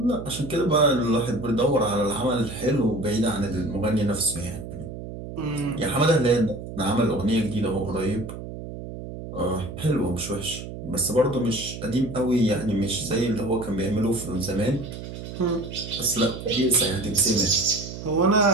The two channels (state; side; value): noise; right; hum, 10 dB below the sound